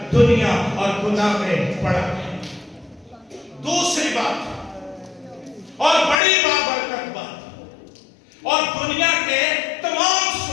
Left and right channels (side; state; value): right; drops out; at 6.2 s